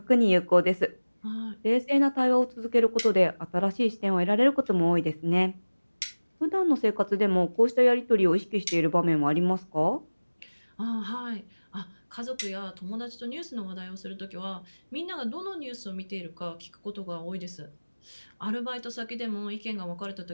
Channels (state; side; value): inverted; both; correlation -1.00